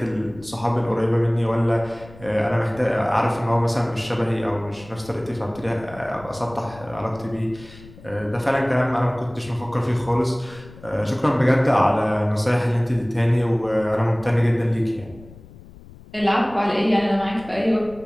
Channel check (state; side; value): noise; left; rumble, 20 dB below the sound